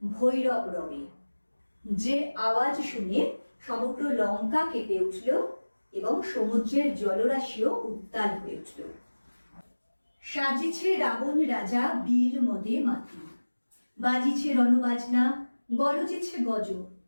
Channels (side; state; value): both; inverted; correlation -1.00